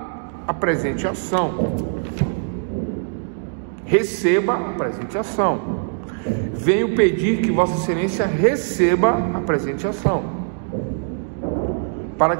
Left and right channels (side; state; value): left; silent; digital silence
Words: a presente ação. Receba a presente ação. Venho pedir que Vossa Excelência receba a presente ação, para